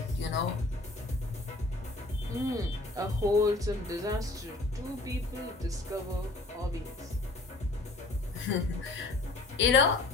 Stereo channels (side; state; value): right; quieter; 3.1 dB